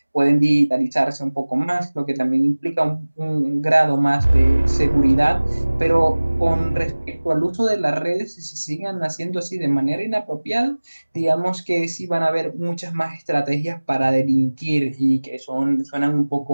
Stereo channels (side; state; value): both; inverted; correlation -1.00